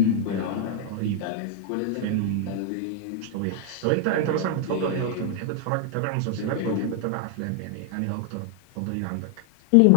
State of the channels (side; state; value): both; different; correlation -0.01